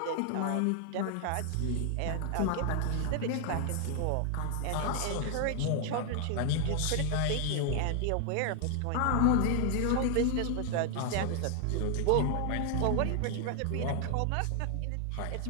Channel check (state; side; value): different; both; correlation 0.00